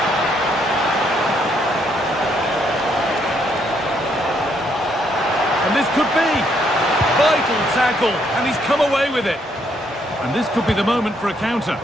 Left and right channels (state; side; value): normal; both; correlation 0.72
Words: And this could be vital tackle, and he's come away with it. And this could be the moment for a counter.